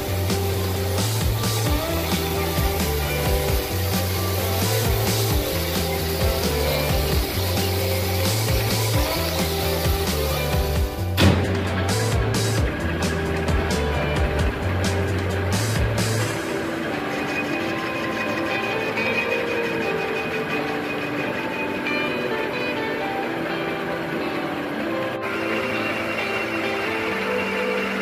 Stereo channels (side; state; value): both; identical; correlation 1.00